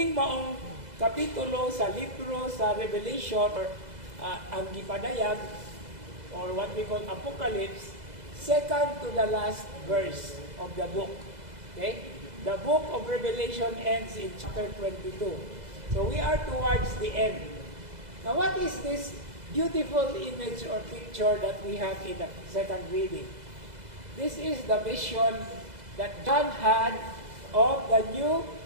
maong kapitulo sa libro sa Revelation, or ang gipadayag, or what we call Apocalypse, second to the last verse of the book. Okay? The book of Revelation ends in chapter 22. So we are towards the end. Now, what is this beautiful image or picture that we have in the second reading? This is the vision that John had of the New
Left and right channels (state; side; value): late; left; 2.0 ms